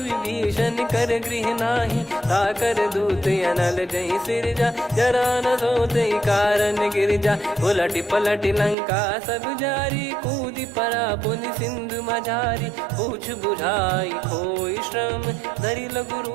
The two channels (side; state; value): left; drops out; at 8.8 s